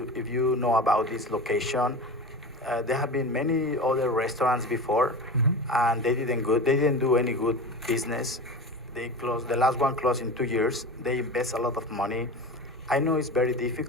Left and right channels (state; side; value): normal; both; correlation 0.30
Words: know about this location. There have been many other restaurants before, and they didn't do any good business. They closed. The last one closed in 2 years. They invest a lot of money. I know it's very